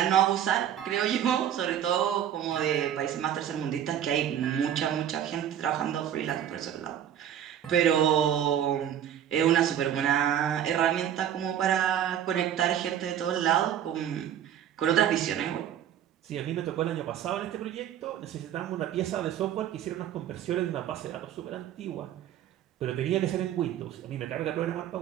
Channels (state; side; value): quieter; left; 10.2 dB